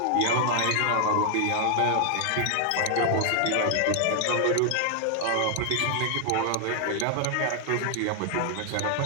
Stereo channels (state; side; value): different; both; correlation 0.00